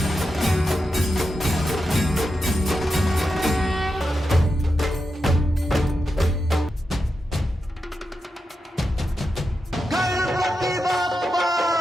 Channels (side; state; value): both; normal; correlation 0.88